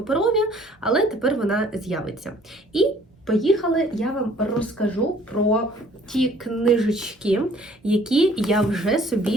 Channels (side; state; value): both; normal; correlation 0.57